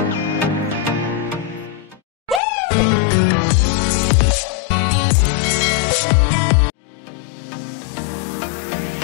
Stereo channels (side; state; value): right; drops out; at 2.4 s